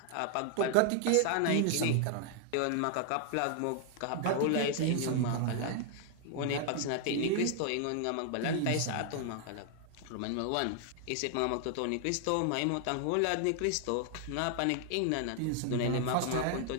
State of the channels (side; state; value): both; different; correlation 0.00